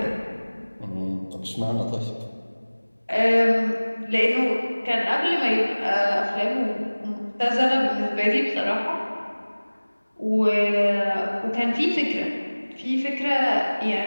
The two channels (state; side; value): inverted; both; correlation -1.00